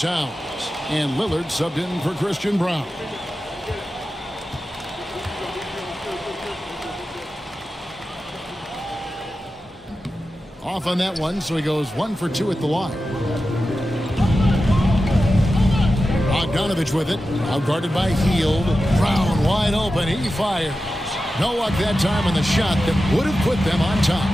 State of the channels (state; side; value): normal; both; correlation 0.92